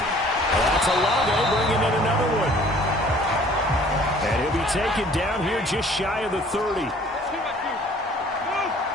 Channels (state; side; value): normal; both; correlation 0.54